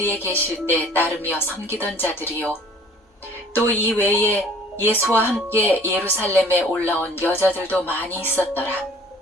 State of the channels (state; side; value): normal; both; correlation 0.52